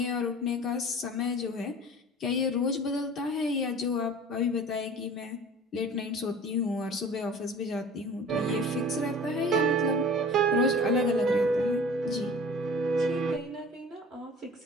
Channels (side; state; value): both; normal; correlation 0.43